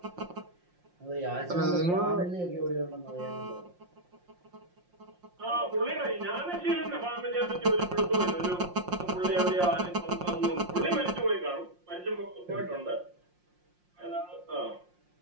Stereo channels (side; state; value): left; late; 5.6 ms